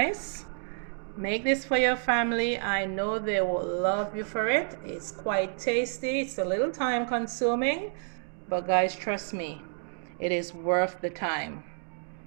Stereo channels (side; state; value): left; silent; 58 dB below the other